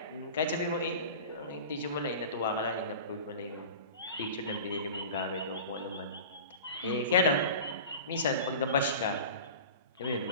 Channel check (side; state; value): both; inverted; correlation -0.36